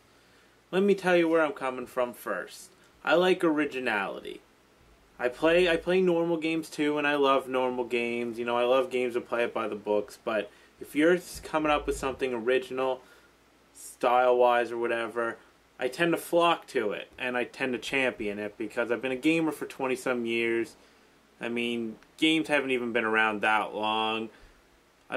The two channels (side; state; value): both; identical; correlation 1.00